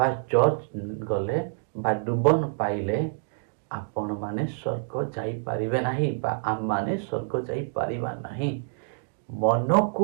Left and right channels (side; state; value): left; silent; digital silence